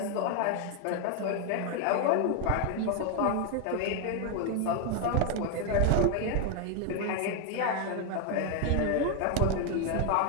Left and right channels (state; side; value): different; both; correlation 0.01